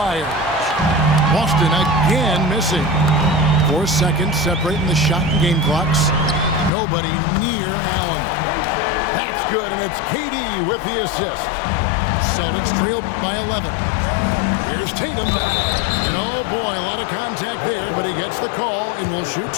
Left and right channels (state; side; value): drops out; right; at 6.7 s